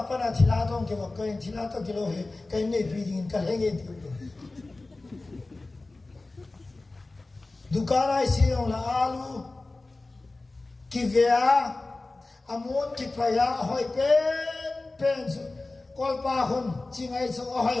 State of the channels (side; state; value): right; quieter; 3.2 dB